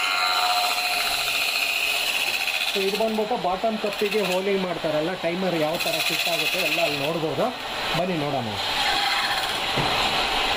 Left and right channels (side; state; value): both; identical; correlation 1.00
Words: ಸೊ ಇದು ಬಂದ್ಬಿಟ್ಟು ಬಾಟಮ್ ಕಪ್ಪಿಗೆ ಹೋಲಿಂಗ್ ಮಾಡ್ತಾರಲ್ಲ, ಟೈಮರ್ ಯಾವ ಥರ ಫಿಟ್ ಆಗುತ್ತೆ ಎಲ್ಲ ಅಲ್ಲಿ ನೋಡ್ಬೋದು. ಬನ್ನಿ ನೋಡೋಣ.